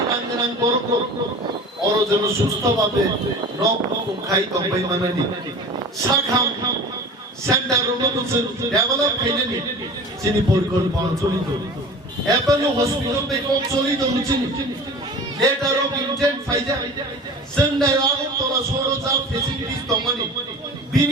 রাঙ্গরাং করক অর যেন সুস্থভাবে রক খাই তবাই মানানি শাখাম সেন্টার রোমোজন ডেভেলপ খাইনি যিনি পরিকল্পনা চলিত অ্যাপোলো হসপিটাল বেকম চলিত হচ্ছেন লেটার অফ ইন্টেন্ট ফাইজা जोंनाय আগরতলা সরজা ফেসিলিটিস দমানি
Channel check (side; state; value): both; normal; correlation 0.38